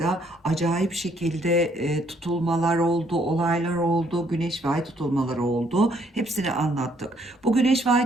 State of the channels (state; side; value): normal; both; correlation 0.68